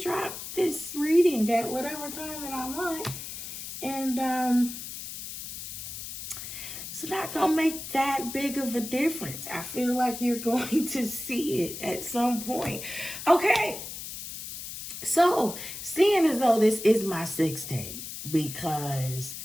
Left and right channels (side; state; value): left; noise; hiss, 9 dB below the sound